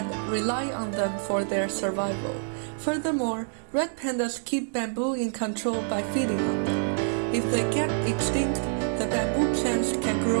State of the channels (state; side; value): silent; left; digital silence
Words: rely on them for their survival. Furthermore, red pandas keep bamboo in control by feeding on them. If they get extinct, the bamboo plants can